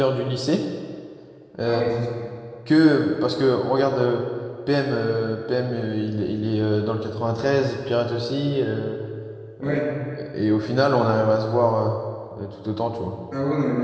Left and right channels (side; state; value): both; identical; correlation 1.00